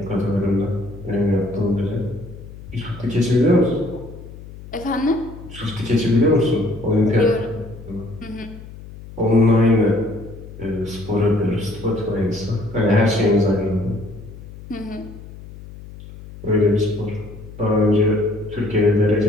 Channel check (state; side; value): noise; left; hum, 16 dB below the sound